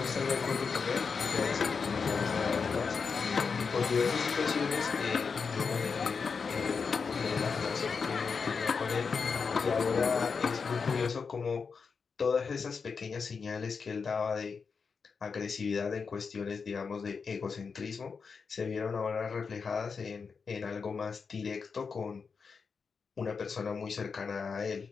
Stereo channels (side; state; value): right; quieter; 5.4 dB